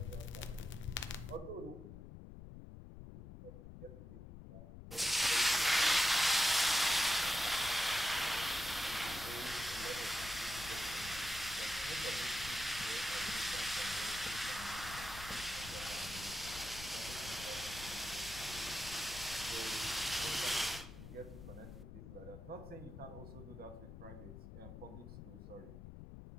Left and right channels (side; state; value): left; noise; rumble, 12 dB below the sound